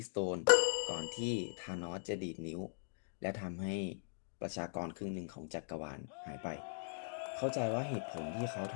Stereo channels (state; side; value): silent; right; digital silence